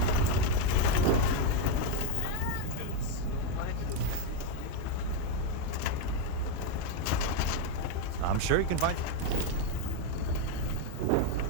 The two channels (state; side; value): different; both; correlation 0.02